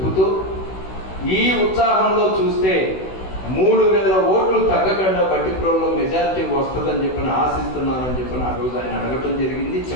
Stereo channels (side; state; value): right; late; 16 ms